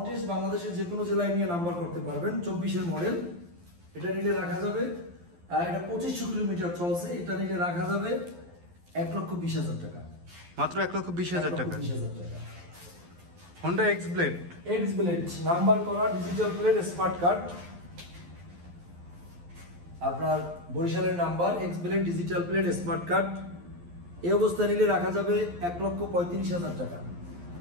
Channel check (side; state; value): left; late; 12 ms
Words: টেস্ট বাংলাদেশের যে কোনো জেলায় নিয়ে নাম্বার করতে পারবেন। 24-এর মডেল, এটা নিলে রাখা যাবে, এটা 2500 কিলোমিটার চলছে, এটা নিলে রাখা যাবে 1,20,000 টাকা, মাত্র 1,20,000 টাকা। 1,20,000 টাকা। Honda X-Blade নাম্বার করা ডিজিটাল প্লেট স্মার্ট কার্ড, আপনার বরিশালের number X-Blade digital plate smart card. এই অবস্থা নিলে রাখা যাবে 1,35,000 টাকা,